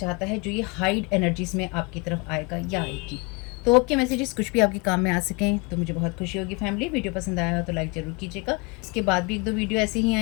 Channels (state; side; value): quieter; right; 29.4 dB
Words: है जो ये हाइड एनर्जीज़ में आपकी तरफ आएगा या आएगी। तो आपके मैसेजेस कुछ भी आपके काम में आ सकें तो मुझे बहुत खुशी होगी। फैमिली, वीडियो पसंद आया हो तो लाइक ज़रूर कीजिएगा। इसके बाद भी 1-2 वीडियो ऐसे ही